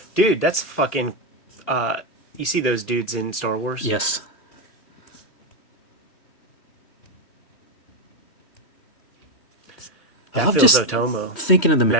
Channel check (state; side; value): late; right; 3.1 ms